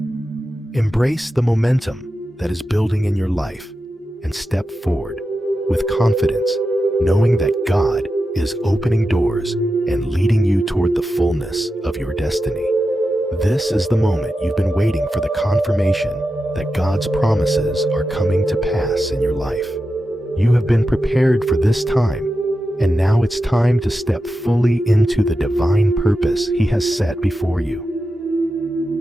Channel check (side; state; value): both; normal; correlation 0.90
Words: Embrace the momentum that is building in your life and step forward with confidence, knowing that God is opening doors and leading you toward the fullness of your destiny. This is the moment you've been waiting for, the confirmation that God's promises are coming to pass in your life. You have been prepared for this time, and now it's time to step fully into the divine purpose He has set before